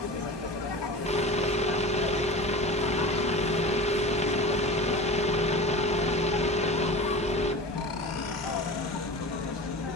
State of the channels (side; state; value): both; normal; correlation 0.34